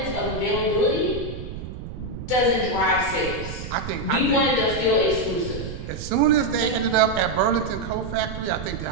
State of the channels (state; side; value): noise; right; rumble, 9 dB below the sound